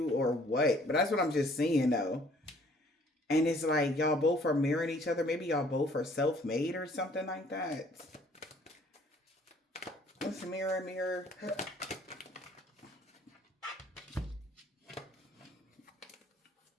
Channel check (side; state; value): both; normal; correlation 0.58